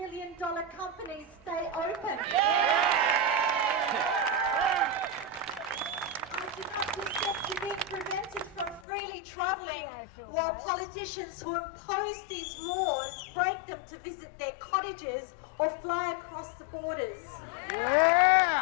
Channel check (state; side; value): drops out; right; at 8.8 s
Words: companies stay open. I do not consent to being prevented from freely travelling while politicians who impose these laws break them to visit their cottages or fly across the borders.